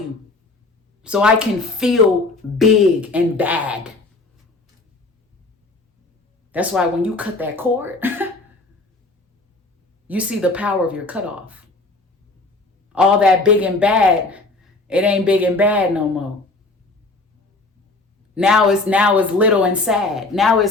so I can feel big and bad. That's why when you cut that cord, you see the power of your cutoff. All that big and bad, it ain't big and bad no more. Now it's little and sad. Now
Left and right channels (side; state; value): right; quieter; 3.2 dB